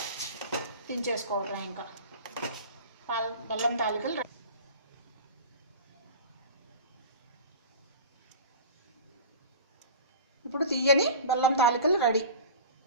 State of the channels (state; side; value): inverted; both; correlation -0.37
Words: దించేసుకోవటం. ఇంకా బెల్లం తాలికలు ఇప్పుడు తీయని బెల్లం తాలికలు రెడీ.